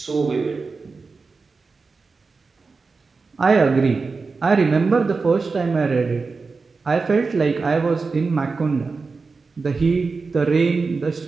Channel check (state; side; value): quieter; left; 4.4 dB